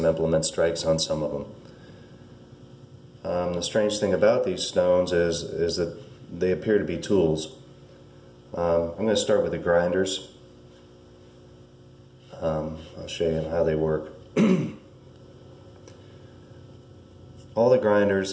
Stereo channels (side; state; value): both; identical; correlation 1.00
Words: implement strikes on some of them. The strange thing about these stones is that they appear to be tools. I'm going to start with the grinders. I'll show you how they work. All the grinders